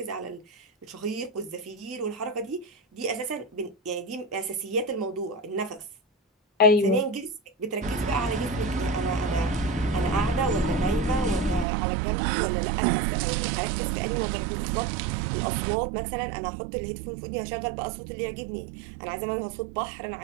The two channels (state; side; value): drops out; left; at 11.7 s